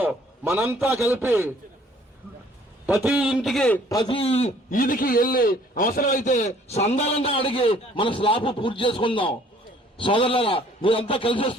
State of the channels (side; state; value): both; normal; correlation 0.58